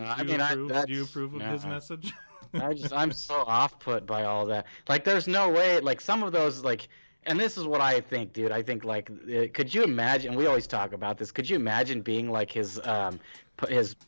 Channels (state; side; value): inverted; both; correlation -1.00